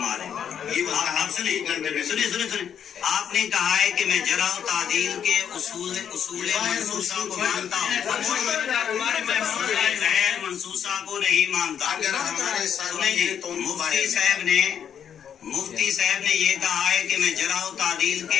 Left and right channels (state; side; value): quieter; right; 8.5 dB